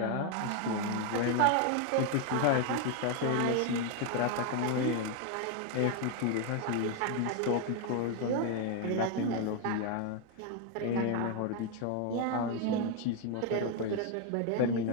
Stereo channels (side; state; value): both; different; correlation 0.01